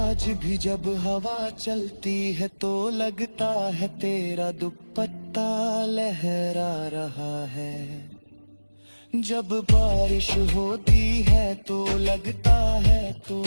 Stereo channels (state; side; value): inverted; both; correlation -1.00